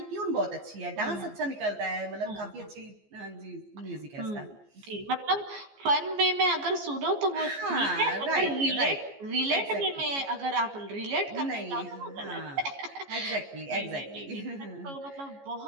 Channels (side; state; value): left; late; 14 ms